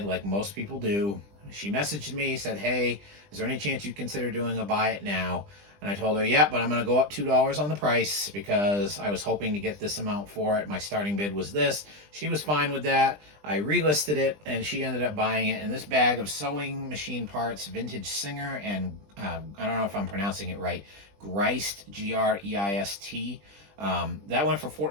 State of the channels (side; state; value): left; late; 20 ms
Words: like most people do. She messaged me, said, hey, is there any chance you'd consider doing a buy it now? And I told her, yeah, but I'm going to go up $2 on the price because I was hoping to get this amount for it. My starting bid was this. She was fine with that. I relisted it, and she ended up buying it. And this bag of sewing machine parts, vintage Singer, and I don't know if I'm pronouncing it right, Greist, Greist, that went for